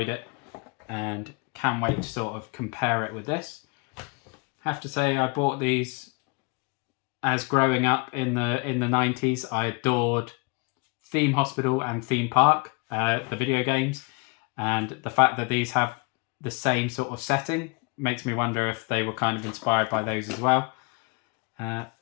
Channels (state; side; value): quieter; right; 30.9 dB